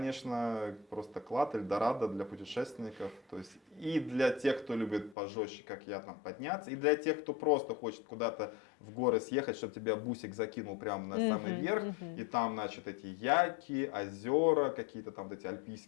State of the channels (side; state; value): right; drops out; at 5.2 s